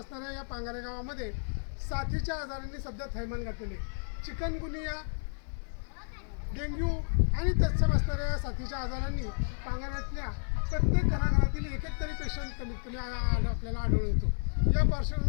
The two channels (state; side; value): silent; right; digital silence